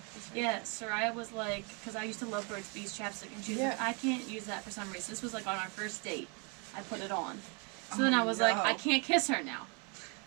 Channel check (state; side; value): quieter; left; 33.9 dB